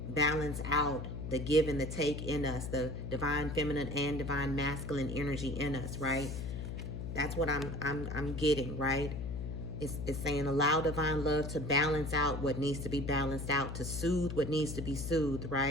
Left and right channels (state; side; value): noise; left; hum, 5 dB below the sound